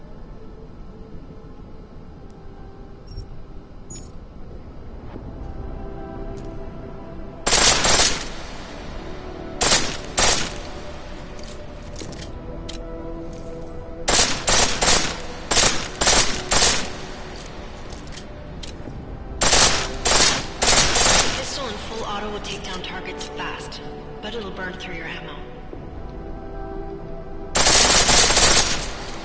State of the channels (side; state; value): both; identical; correlation 1.00